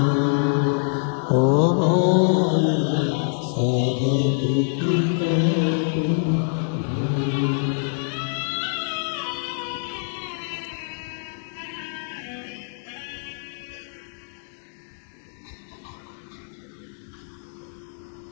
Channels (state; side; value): silent; right; digital silence